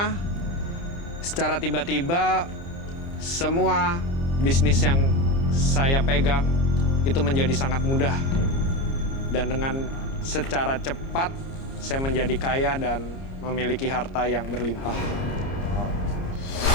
secara tiba-tiba semua bisnis yang saya pegang itu menjadi sangat mudah. Dan dengan secara cepat saya menjadi kaya dan memiliki harta yang berlimpah.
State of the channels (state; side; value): late; right; 30 ms